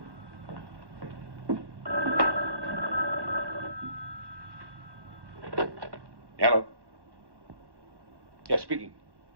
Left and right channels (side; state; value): left; late; 1.1 ms